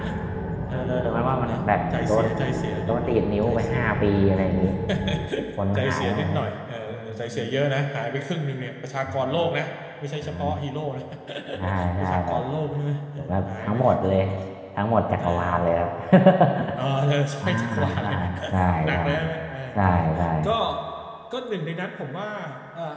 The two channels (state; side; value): identical; both; correlation 1.00